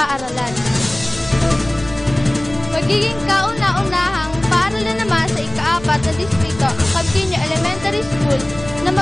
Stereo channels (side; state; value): left; noise; rumble, 16 dB below the sound